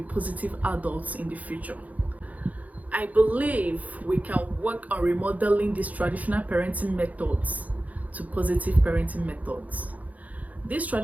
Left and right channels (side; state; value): left; late; 0.075 ms